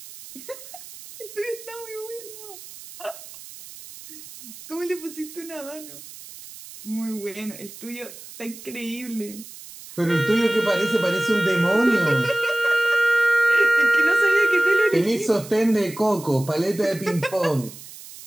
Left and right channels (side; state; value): right; noise; hiss, 16 dB below the sound